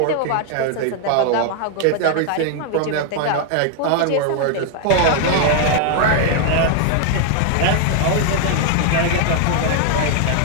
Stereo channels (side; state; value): both; different; correlation 0.00